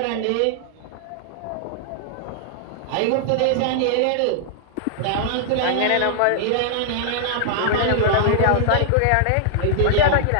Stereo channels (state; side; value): different; both; correlation -0.01